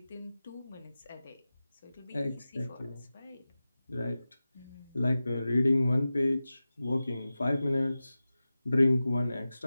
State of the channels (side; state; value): both; inverted; correlation -0.95